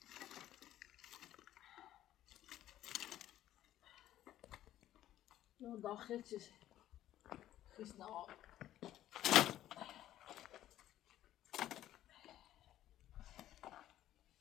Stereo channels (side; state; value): right; quieter; 12.9 dB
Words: اون داخل چیز خیس نواب